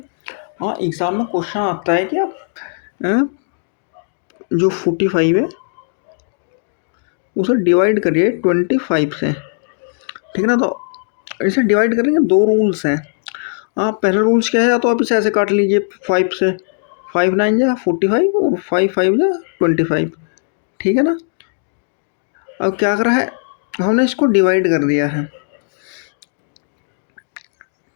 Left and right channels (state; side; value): silent; right; digital silence